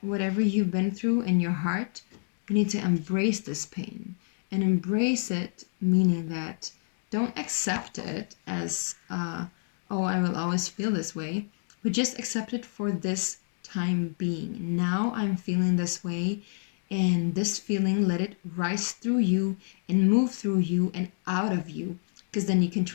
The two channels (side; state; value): right; silent; digital silence